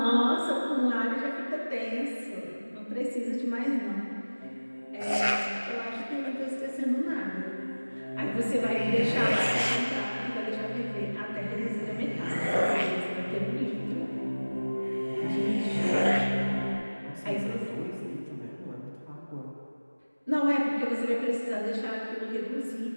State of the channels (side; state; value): both; inverted; correlation -1.00